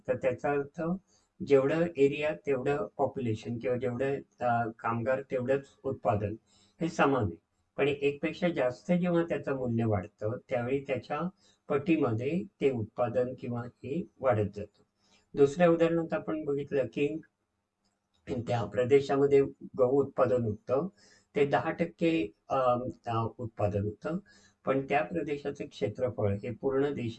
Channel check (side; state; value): both; identical; correlation 1.00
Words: तर त्याचा अर्थ जेवढं एरिया तेवढं पॉप्युलेशन किंवा जेवढं कामगार तेवढंच उत्पादन हे समान आहे. पण 1 पेक्षा जास्त जेव्हा त्याचं मूल्य वाढतं त्यावेळी त्याच्या पटीमध्ये ते उत्पादन किंवा हे वाढत जातं. दुसऱ्या उदाहरणात आपण बघितलं की त्या प्रदेशामध्ये गहू उत्पादन होतं ते 10% उत्पादन होतं, पण त्या प्रदेशाचं क्षेत्रफळ हे पूर्ण